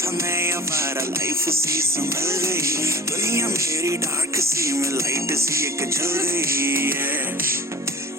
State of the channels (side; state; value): both; normal; correlation 0.42